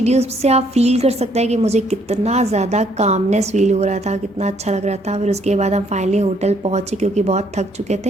से आप फील कर सकते हैं कि मुझे कितना ज़्यादा कामनेस फील हो रहा था, कितना अच्छा लग रहा था। फिर उसके बाद हम फाइनली होटल पहुँचे क्योंकि बहुत थक चुके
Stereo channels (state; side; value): normal; both; correlation 0.67